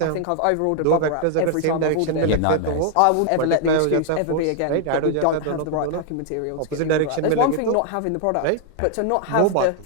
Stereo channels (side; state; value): both; different; correlation 0.00